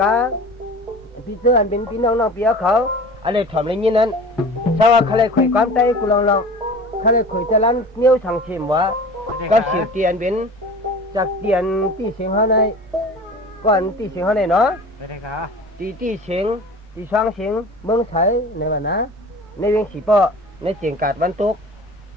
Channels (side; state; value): both; normal; correlation 0.39